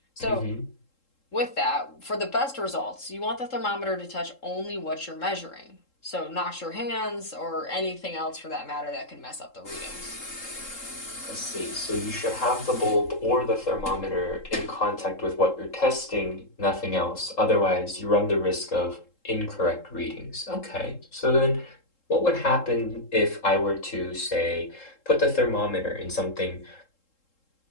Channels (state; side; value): late; right; 3.7 ms